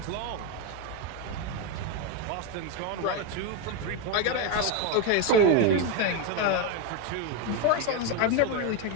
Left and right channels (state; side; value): different; both; correlation 0.03